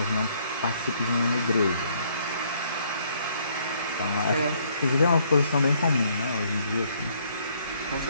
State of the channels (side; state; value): both; inverted; correlation -0.66